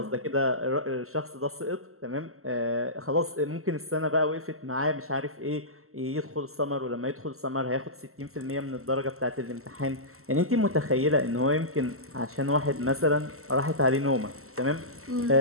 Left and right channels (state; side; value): late; left; 0.63 ms